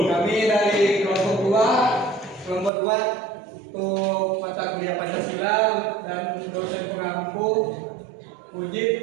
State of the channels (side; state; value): left; drops out; at 2.7 s